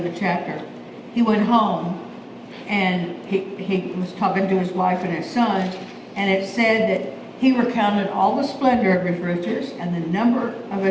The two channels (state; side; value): identical; both; correlation 1.00